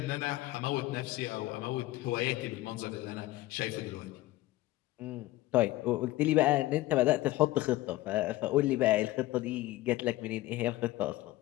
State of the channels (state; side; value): quieter; right; 17.2 dB